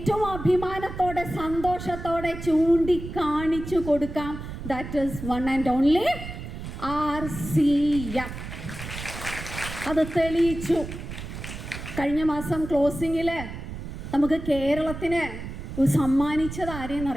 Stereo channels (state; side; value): noise; right; rumble, 9 dB below the sound